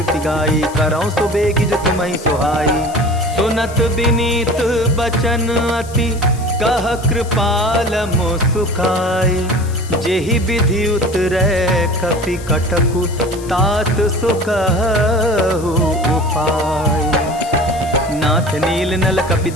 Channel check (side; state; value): left; noise; hiss, 18 dB below the sound